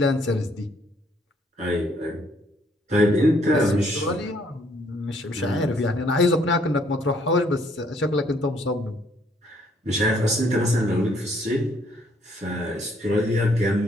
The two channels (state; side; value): normal; both; correlation 0.66